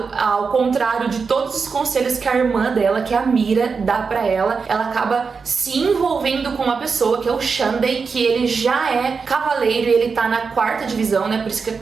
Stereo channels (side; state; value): left; quieter; 5.2 dB